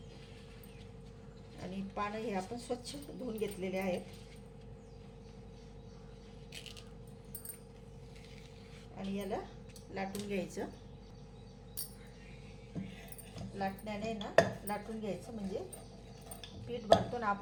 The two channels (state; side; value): identical; both; correlation 1.00